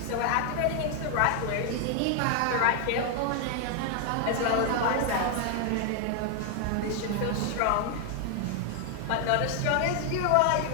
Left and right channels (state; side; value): different; both; correlation 0.00